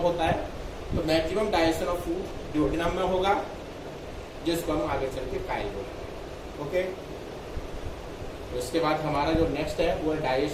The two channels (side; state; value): both; identical; correlation 1.00